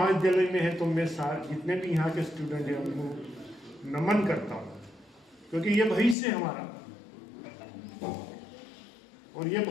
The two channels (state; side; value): drops out; right; at 6.2 s